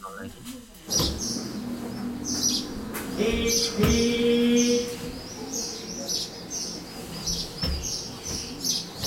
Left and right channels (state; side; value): identical; both; correlation 1.00